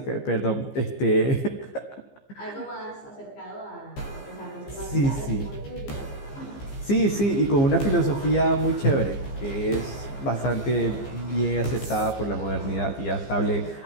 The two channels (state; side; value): late; right; 15 ms